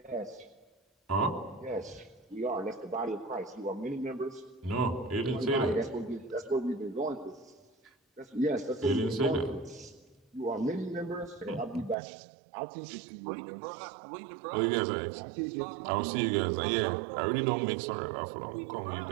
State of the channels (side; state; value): left; drops out; at 12.0 s